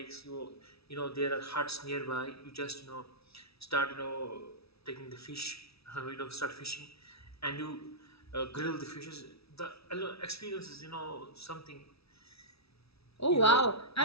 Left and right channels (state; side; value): late; right; 0.77 ms